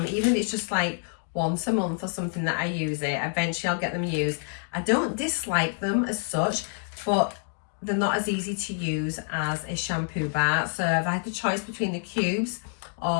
even if it's just like once a month or something that I use it. Eventually I'll get them used. I don't dislike them as such, but they're not as easy to use as a shampoo bar. So if I had the choice between the cubes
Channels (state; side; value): silent; right; 59 dB below the other